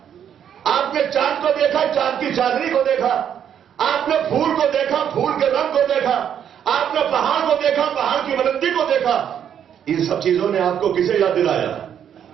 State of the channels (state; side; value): quieter; left; 9.0 dB